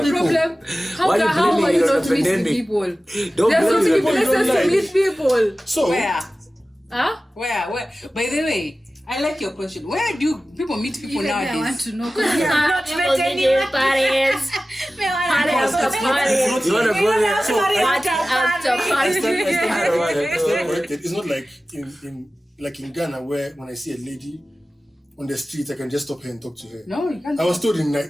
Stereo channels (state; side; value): normal; both; correlation 0.95